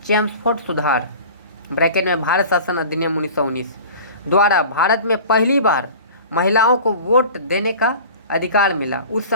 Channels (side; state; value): both; inverted; correlation -0.40